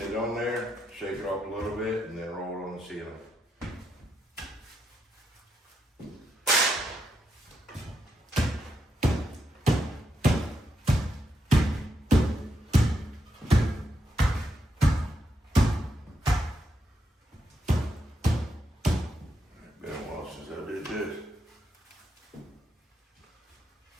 on there, shake it off a little bit, and then roll it on the ceiling. Been a while since I did this.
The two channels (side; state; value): both; normal; correlation 0.82